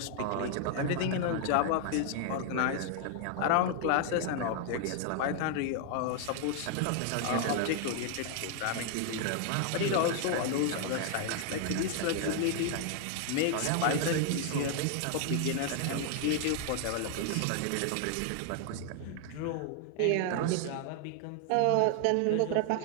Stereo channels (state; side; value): different; both; correlation 0.00